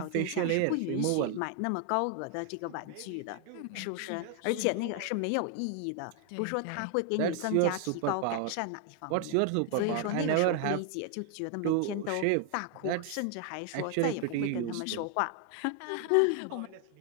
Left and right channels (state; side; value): different; both; correlation 0.00